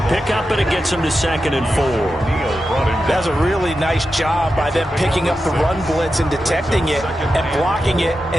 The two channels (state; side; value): normal; both; correlation 0.90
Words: pickup, and it gets him to 2nd and 4. That's a really nice job by them picking up the run blitz and detecting it and blocking it